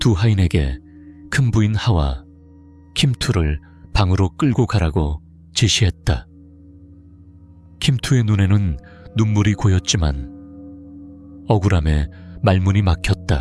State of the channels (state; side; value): identical; both; correlation 1.00